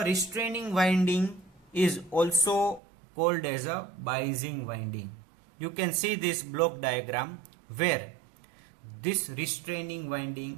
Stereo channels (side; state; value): left; drops out; at 2.8 s